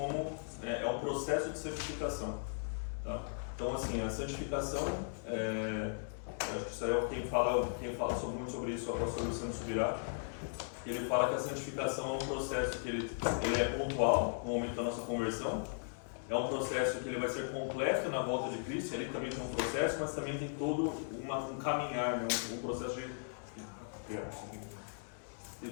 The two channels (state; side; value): silent; right; digital silence